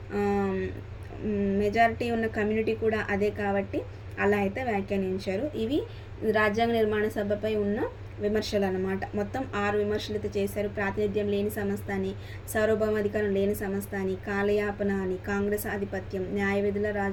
ఉన్న కమ్యూనిటీ కూడా అదే కాబట్టి అలా అయితే వ్యాఖ్యానించారు. ఇవి రాజ్యాంగ నిర్మాణ సభపై ఉన్న విమర్శలు అన్నమాట. మొత్తం 6 విమర్శలు అయితే చేశారు. ప్రాతినిధ్యం లేని సంస్థ అని, సార్వభౌమాధికారం లేని సంస్థ అని, కాలయాపన అని, కాంగ్రెస్ ఆధిపత్యం, న్యాయ విధుల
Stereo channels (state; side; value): identical; both; correlation 1.00